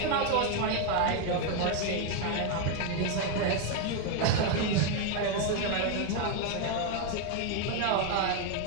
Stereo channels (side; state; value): both; different; correlation 0.01